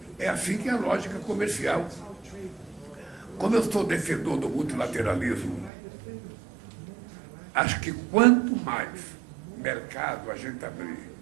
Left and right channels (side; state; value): left; drops out; at 5.7 s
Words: É assim que é a lógica comercial. Como eu sou defensor do multilateralismo, acho que quanto mais mercado a gente abrir,